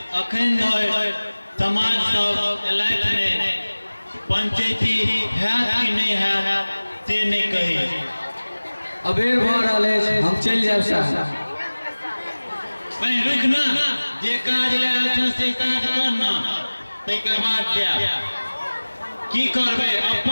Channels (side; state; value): both; inverted; correlation -1.00